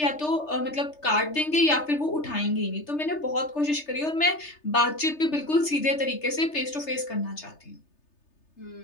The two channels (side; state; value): right; late; 3.3 ms